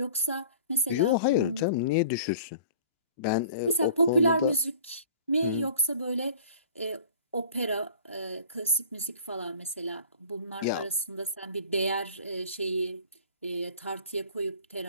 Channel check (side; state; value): both; inverted; correlation -0.46